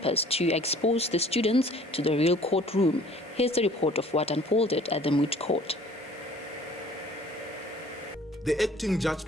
to expose the students to the real courtroom. Here's the report of what unfolded at the moot court. The acting judge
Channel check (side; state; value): both; normal; correlation 0.53